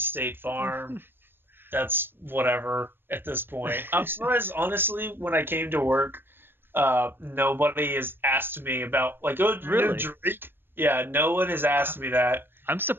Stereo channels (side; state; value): left; late; 0.099 ms